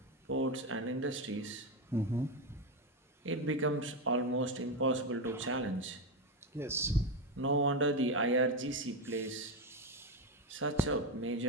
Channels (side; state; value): both; normal; correlation 0.11